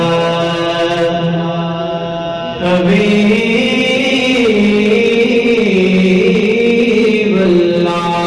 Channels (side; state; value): both; identical; correlation 1.00